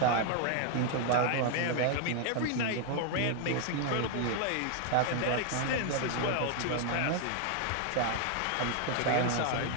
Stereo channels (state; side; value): different; both; correlation 0.00